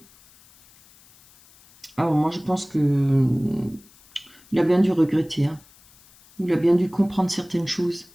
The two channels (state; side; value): noise; left; hiss, 27 dB below the sound